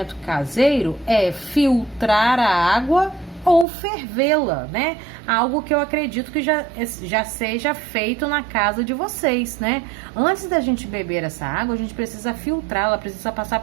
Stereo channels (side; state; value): left; drops out; at 3.7 s